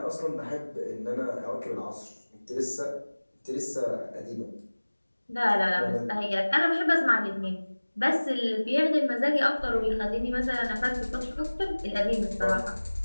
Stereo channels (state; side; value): inverted; both; correlation -1.00